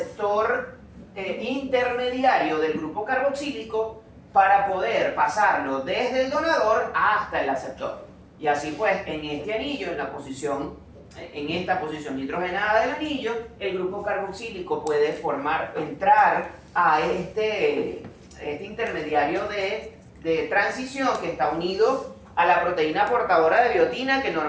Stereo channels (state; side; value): identical; both; correlation 1.00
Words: intermediario del grupo carboxílico para poder pasarlo desde el donador hasta el aceptor. Y así pues, en este anillo, en esta posición nitrogenada del anillo, el grupo carboxílico puede entrar a este intermediario de transición que está unido a la proteína portadora de biotina, que